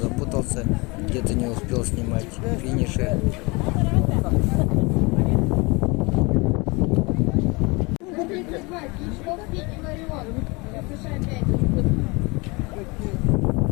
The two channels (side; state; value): right; quieter; 26.6 dB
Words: где-то не успел снимать финиши.